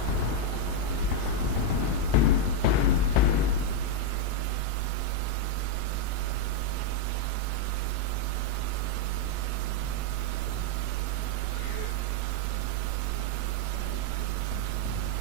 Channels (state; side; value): different; both; correlation 0.00